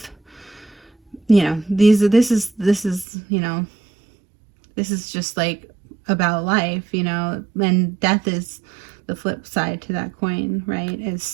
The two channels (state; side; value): drops out; left; at 3.1 s